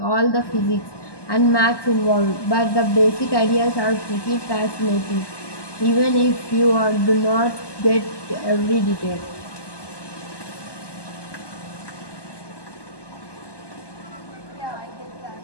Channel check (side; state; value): right; late; 1.2 ms